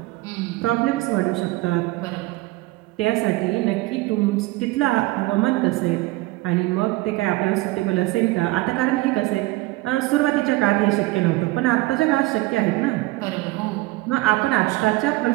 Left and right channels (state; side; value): quieter; left; 20.2 dB